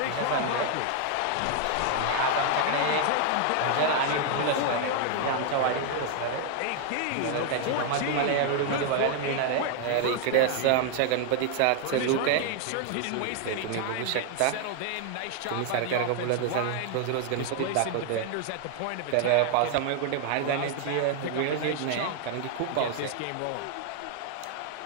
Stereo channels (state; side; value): different; both; correlation 0.00